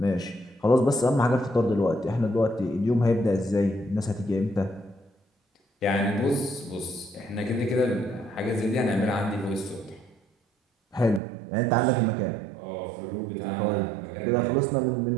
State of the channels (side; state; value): left; drops out; at 11.2 s